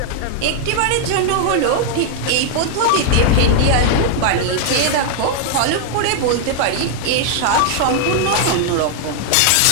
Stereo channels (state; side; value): different; both; correlation 0.00